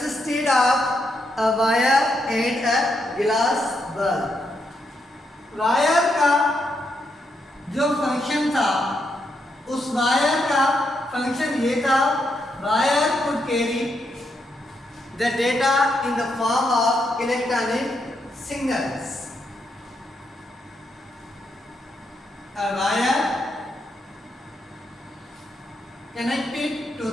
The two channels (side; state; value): both; normal; correlation 0.80